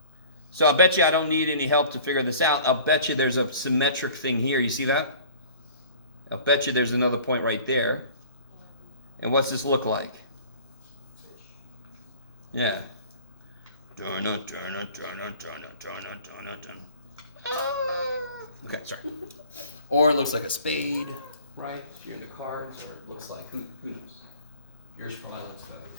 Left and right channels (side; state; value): both; inverted; correlation -0.46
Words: So I'll bet you I don't need any help to figure this out. I'll bet you there's a symmetric thing here. You see that? I'll bet you there's another point right there. And what's this look like? Yeah. Okay, sorry. Or it looks like a spade, right? If you're into cards, or it looks like, who knows? Yours probably looks better.